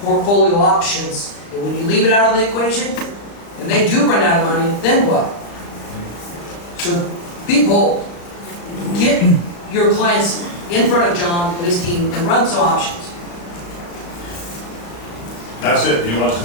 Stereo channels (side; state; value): right; late; 35 ms